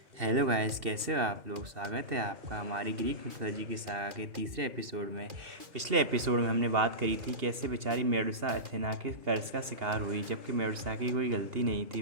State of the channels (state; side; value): late; left; 2.8 ms